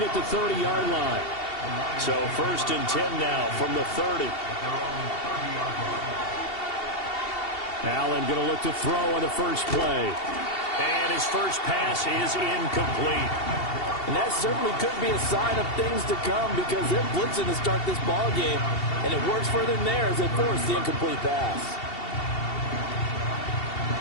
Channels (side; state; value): right; late; 2.7 ms